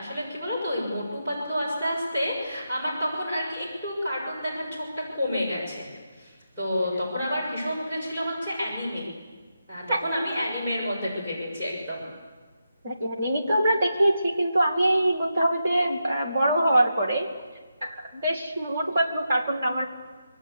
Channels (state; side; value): inverted; both; correlation -0.86